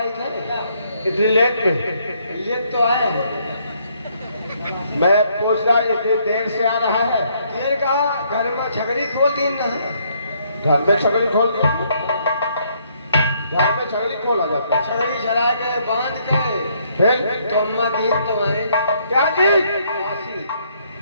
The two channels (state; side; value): inverted; both; correlation -0.69